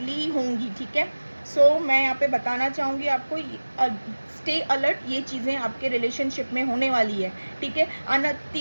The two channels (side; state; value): both; inverted; correlation -1.00